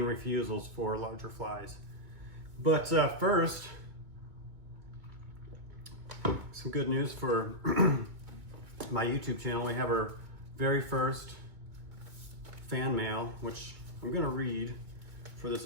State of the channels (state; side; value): late; left; 2.2 ms